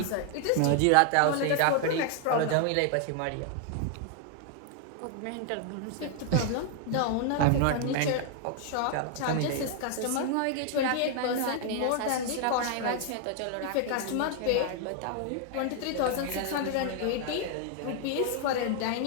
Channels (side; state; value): both; different; correlation 0.00